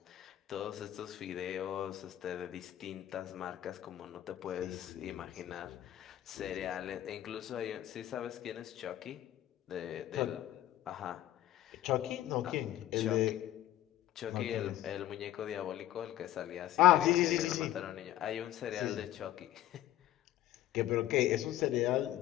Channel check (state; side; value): quieter; right; 13.7 dB